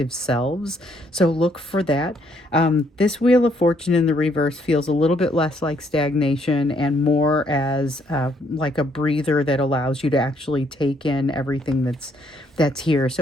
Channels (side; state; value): both; normal; correlation 0.70